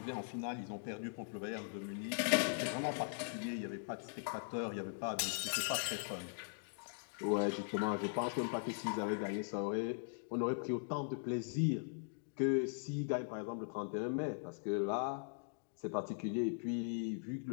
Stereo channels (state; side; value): silent; right; digital silence